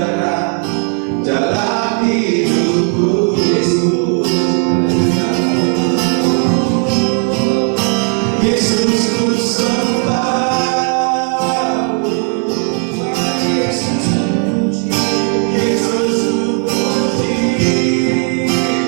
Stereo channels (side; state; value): left; quieter; 37.2 dB